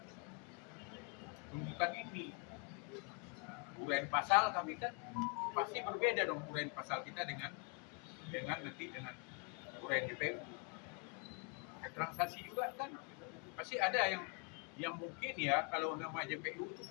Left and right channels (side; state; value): right; quieter; 34.0 dB